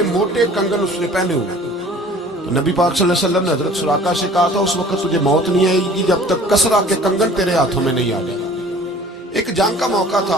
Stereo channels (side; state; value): both; normal; correlation 0.49